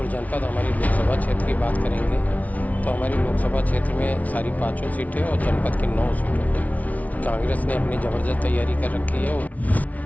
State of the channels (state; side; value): late; right; 0.071 ms